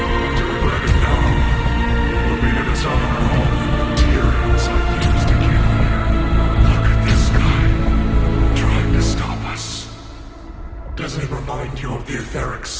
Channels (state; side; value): identical; both; correlation 1.00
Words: To regret it now would be to dishonor all the materials I used to get here. Look at this guy, trying to stop us. Doesn't it remind you of the etheric